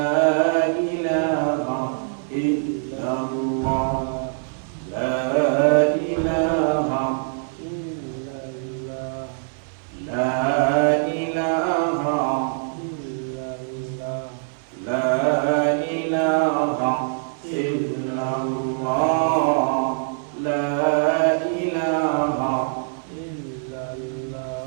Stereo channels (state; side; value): silent; left; 63 dB below the other